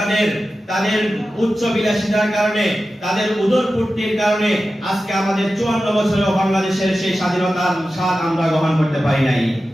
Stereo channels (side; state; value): both; normal; correlation 0.93